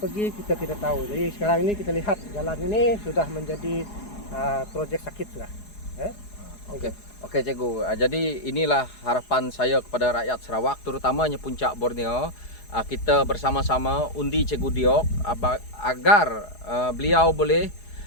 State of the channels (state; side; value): late; right; 4.8 ms